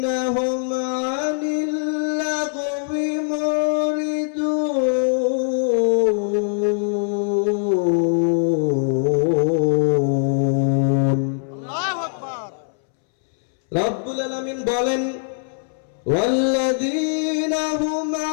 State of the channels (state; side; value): silent; right; 65 dB below the other